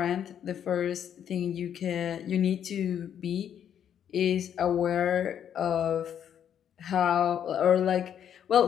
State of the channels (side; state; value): right; quieter; 9.2 dB